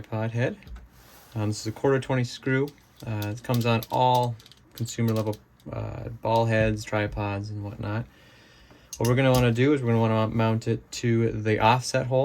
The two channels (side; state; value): both; identical; correlation 1.00